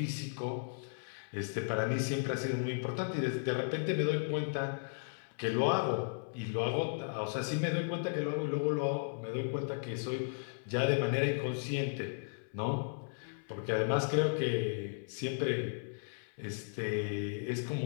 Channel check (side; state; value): right; silent; 54 dB below the other